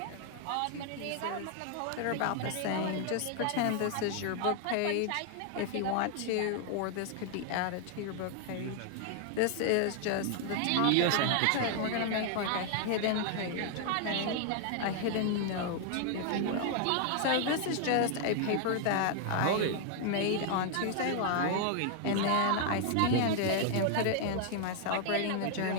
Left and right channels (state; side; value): different; both; correlation 0.00